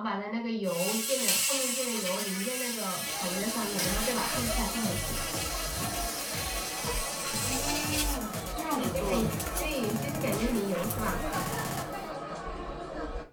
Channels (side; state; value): both; identical; correlation 1.00